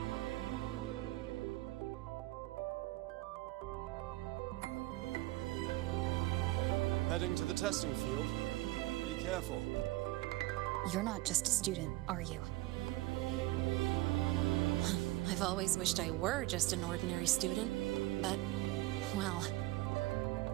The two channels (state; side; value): quieter; left; 18.8 dB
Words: Heading to the testing field. Be careful. You're not just a student, are you? I've always wished I were just an ordinary student, but, well...